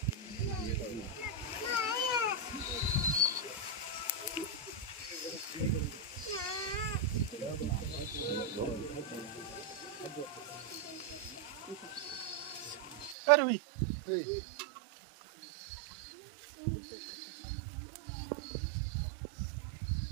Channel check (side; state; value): left; drops out; at 13.2 s